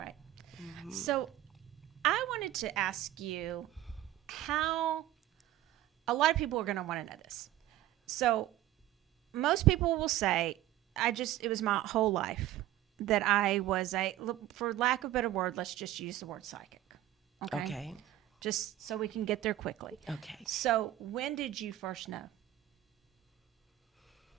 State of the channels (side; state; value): left; quieter; 14.0 dB